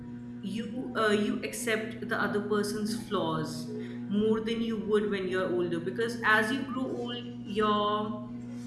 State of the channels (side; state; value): both; identical; correlation 1.00